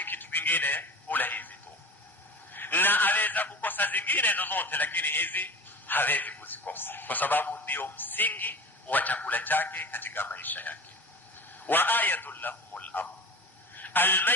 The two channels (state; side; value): normal; both; correlation 0.35